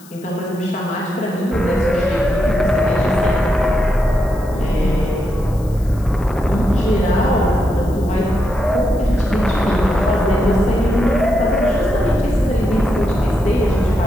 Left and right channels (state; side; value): noise; left; hiss, 24 dB below the sound